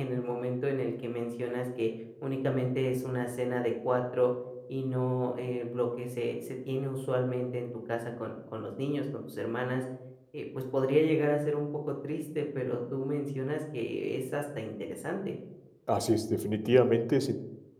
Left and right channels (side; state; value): both; identical; correlation 1.00